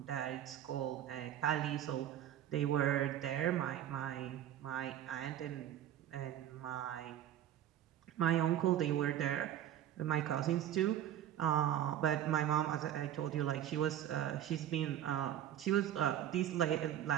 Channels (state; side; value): quieter; left; 11.2 dB